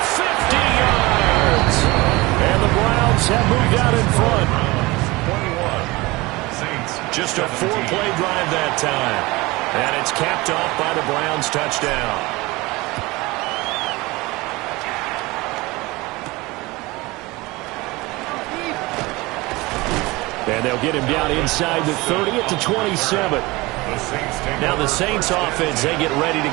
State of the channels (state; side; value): quieter; left; 22.0 dB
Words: 50 yards. And the Browns have moved out in front. 21. Saints. Just a 4-play drive that time. And it's capped off by the Browns touchdown. And they'll get him down inside the 30 at the 27. Now the Saints offense, they get ready to